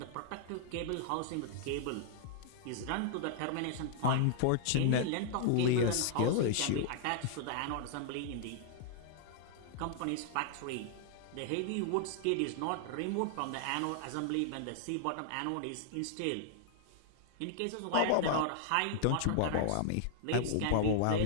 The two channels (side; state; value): both; different; correlation -0.01